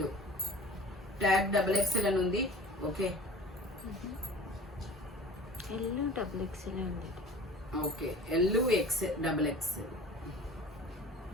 tag XXL అని ఉంది. Okay, okay, LXXL.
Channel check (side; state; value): both; normal; correlation 0.41